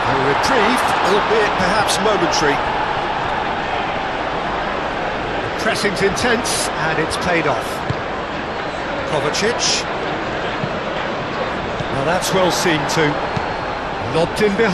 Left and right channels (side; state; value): both; identical; correlation 1.00